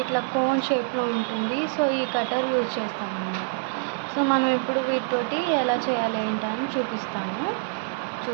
ఇట్లా కోన్ షేప్లో ఉంటుంది. సో ఈ కట్టర్ యూజ్ చేస్తాం అన్నమాట. సో మనం ఇప్పుడు వీటితోటి ఎలా చేయాలి ఏంటని చూపిస్తాను,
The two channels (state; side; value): silent; left; 61 dB below the other